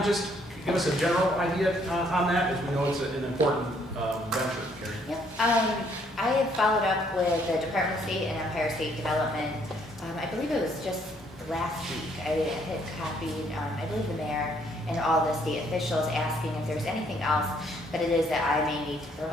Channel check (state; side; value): normal; both; correlation 0.67